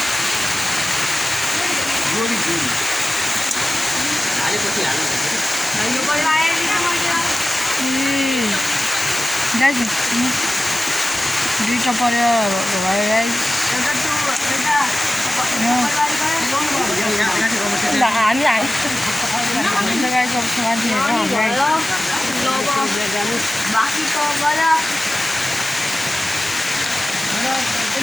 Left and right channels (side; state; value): both; normal; correlation 0.96